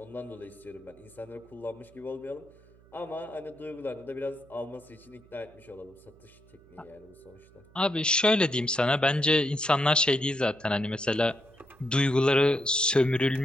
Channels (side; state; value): right; noise; hum, 27 dB below the sound